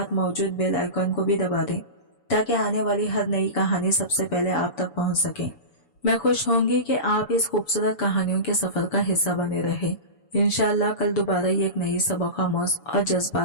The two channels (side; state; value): right; late; 7.0 ms